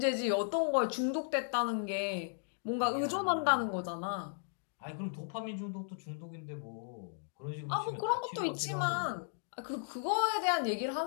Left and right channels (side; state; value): right; silent; digital silence